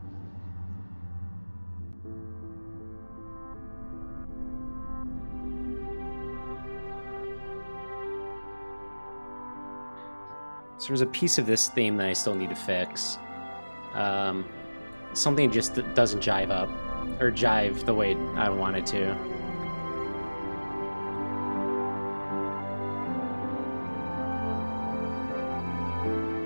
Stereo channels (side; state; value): both; inverted; correlation -1.00